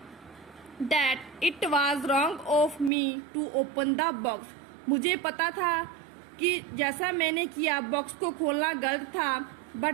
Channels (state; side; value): drops out; left; at 2.9 s